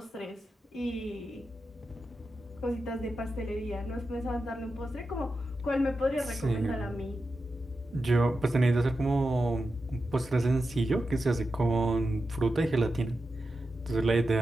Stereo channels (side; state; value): both; normal; correlation 0.90